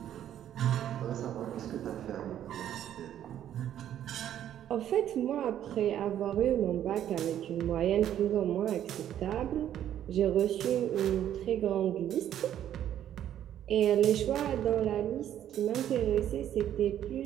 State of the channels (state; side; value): quieter; left; 10.9 dB